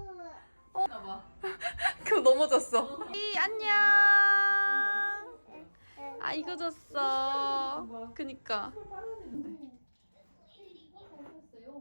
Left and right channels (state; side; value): inverted; both; correlation -1.00